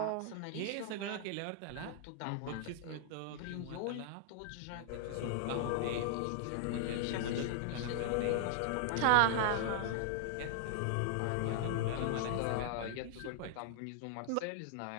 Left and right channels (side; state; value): both; different; correlation -0.01